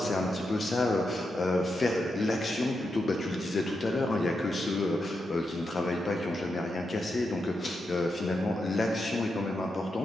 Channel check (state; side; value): normal; both; correlation 0.85